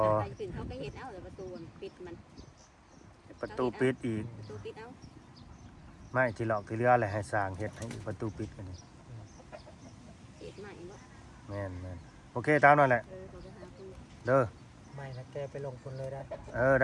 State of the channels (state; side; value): identical; both; correlation 1.00